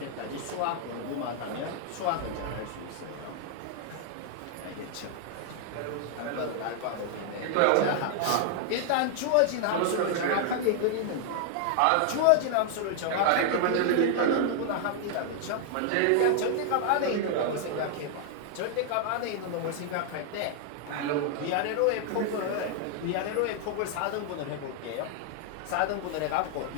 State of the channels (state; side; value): different; both; correlation 0.00